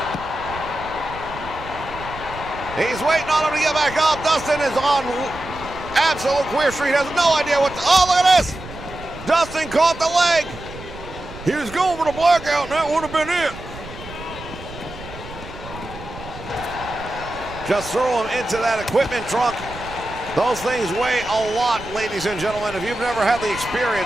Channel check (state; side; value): noise; right; rumble, 14 dB below the sound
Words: He's waiting on him to get back up. Dustin is on absolute queer street. Has no idea what to, oh, look at this. Dustin caught the leg. He was going for the blackout, and that would have been it. Just throw him into that equipment trunk. Those things weigh a lot, ladies and gentlemen. If you've never had the